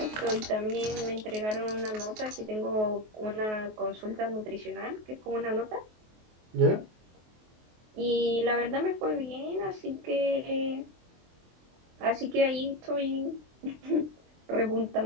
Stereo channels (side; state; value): left; late; 23 ms